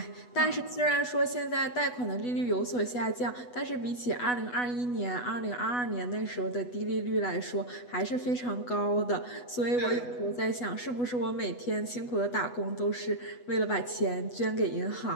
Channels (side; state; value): right; late; 8.1 ms